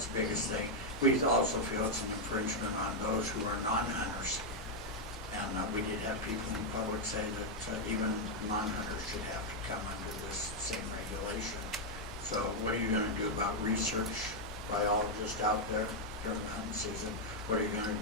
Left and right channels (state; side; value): normal; both; correlation -0.01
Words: the biggest thing. We also feel it's an infringement on those who are non-hunters. And we did have people in the public say that even non-hunters should have to come under this same regulation. So what are you going to do about research biologists out there during the hunting season? What are you going to